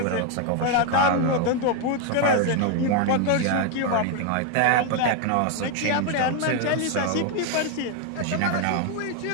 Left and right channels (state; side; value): different; both; correlation 0.01